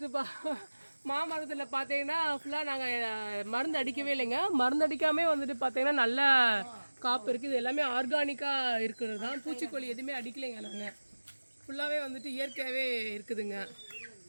மாமரத்தில் பார்த்தீங்கன்னா ஃபுல்லாக நாங்கள் மருந்து அடிக்கவே இல்லைங்க. மருந்து அடிக்காமே வந்துட்டு பார்த்தீங்கன்னா நல்ல காப்பு இருக்குது. இது எல்லாமே ஆர்கானிக்காக இருக்கிறது தான். பூச்சிக்கொல்லி எதுவுமே அடிக்கலைங்க. நாங்கள் ஃபுல்லாகவே வந்துட்டு இயற்கையாகவே இருக்குதுங்க.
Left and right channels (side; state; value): both; inverted; correlation -1.00